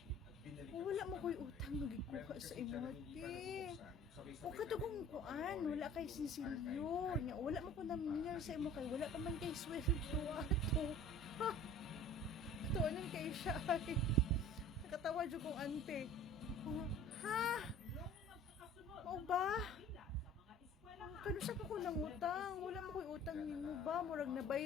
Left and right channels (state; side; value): normal; both; correlation 0.45